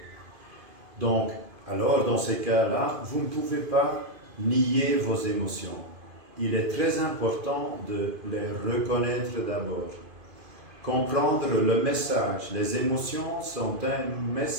Donc, alors dans ces cas-là, vous ne pouvez pas nier vos émotions. Il est très important de les reconnaître d'abord. Comprendre le message. Les émotions sont un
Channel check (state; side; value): late; left; 2.5 ms